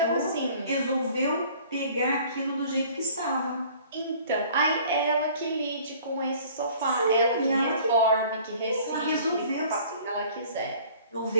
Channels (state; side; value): inverted; both; correlation -0.51